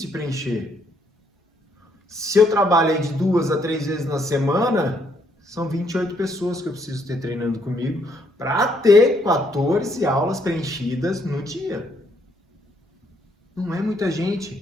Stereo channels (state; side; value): normal; both; correlation 0.71